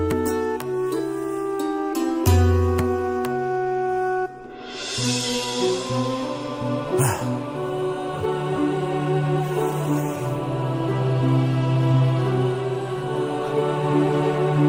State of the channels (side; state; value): both; identical; correlation 1.00